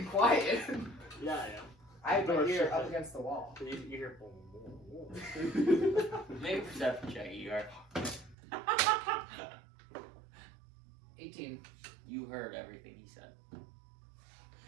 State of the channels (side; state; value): left; drops out; at 8.3 s